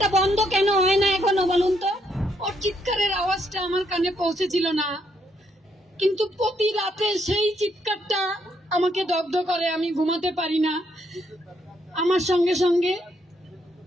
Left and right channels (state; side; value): normal; both; correlation 0.74